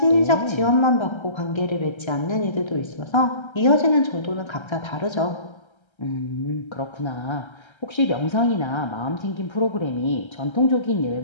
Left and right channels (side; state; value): right; late; 1.3 ms